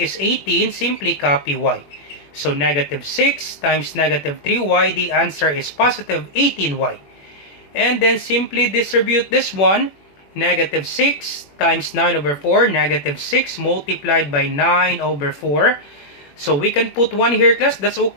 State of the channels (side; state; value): right; late; 21 ms